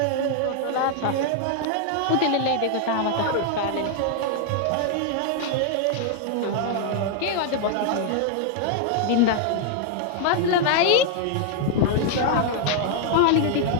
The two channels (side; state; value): both; different; correlation 0.00